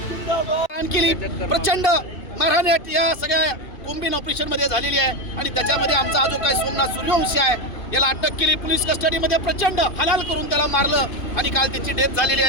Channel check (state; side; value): late; right; 2.7 ms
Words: जिंदाबाद। आणखी प्रचंड मारहाण या सगळ्या कोम्बिन ऑपरेशन मध्ये झालेली आहे आणि त्याच्यामध्ये आमचा हा जो काही सोमनाथ सूर्यवंशी आहे याला अटक केली, पोलीस कस्टडीमध्ये प्रचंड हलाल करून त्याला मारलं आणि काल त्याची डेथ झालेली